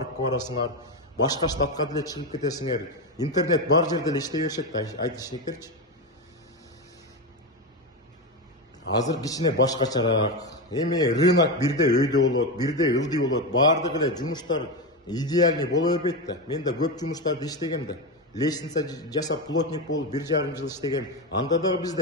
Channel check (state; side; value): normal; both; correlation 0.14